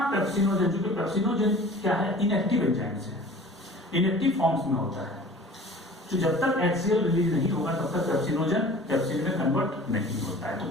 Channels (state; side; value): normal; both; correlation 0.44